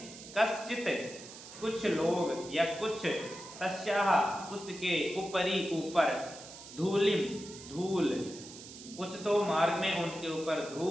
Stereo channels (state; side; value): noise; right; hiss, 15 dB below the sound